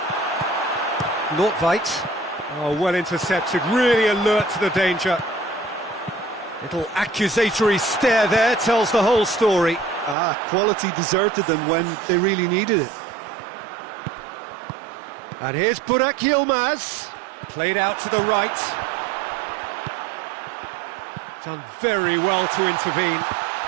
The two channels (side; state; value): left; drops out; at 10.2 s